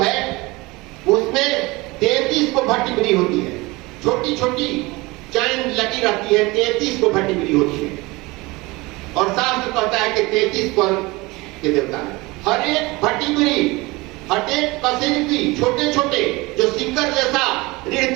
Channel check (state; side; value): quieter; left; 22.8 dB